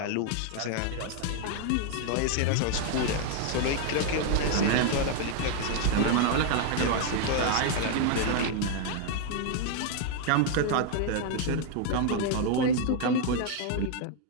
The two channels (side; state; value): both; different; correlation 0.00